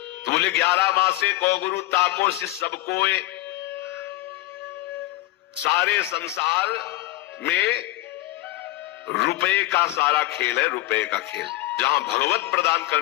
तो बोले 11 मासे को गुरु ताको शिष्य सबको, सारे संसार में रुपए का सारा खेल है, रुपए का खेल। जहां भगवत प्रदान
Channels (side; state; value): right; quieter; 17.7 dB